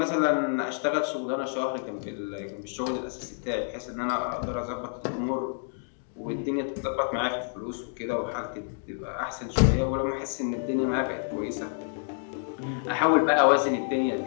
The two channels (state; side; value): silent; right; digital silence